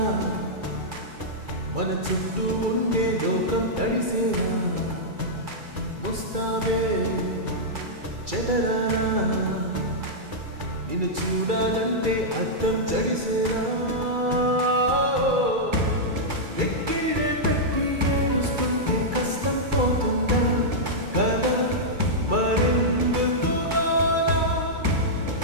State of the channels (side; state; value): left; late; 2.3 ms